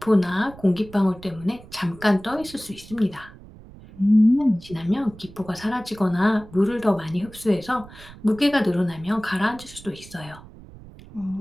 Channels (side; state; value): right; noise; rumble, 19 dB below the sound